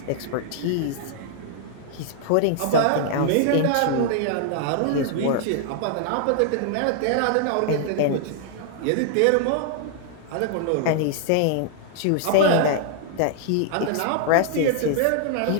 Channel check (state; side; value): different; both; correlation -0.01